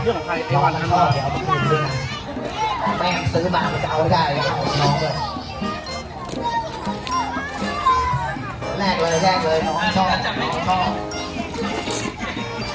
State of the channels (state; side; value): identical; both; correlation 1.00